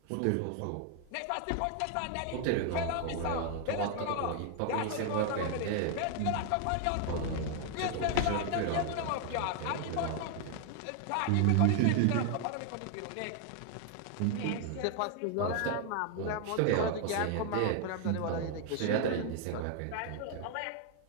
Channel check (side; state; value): both; different; correlation 0.00